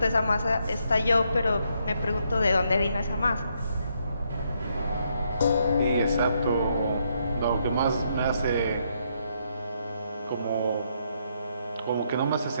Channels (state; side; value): inverted; both; correlation -0.76